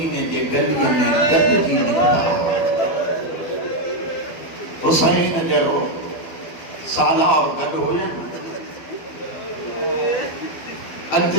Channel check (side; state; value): right; late; 12 ms